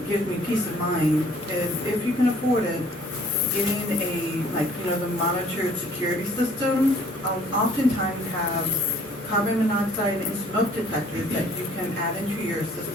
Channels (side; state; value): both; normal; correlation 0.57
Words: Gives me peace of mind is if you can afford it, getting the monitored security system. Oftentimes have carbon monoxide and smoke detectors that you can add into your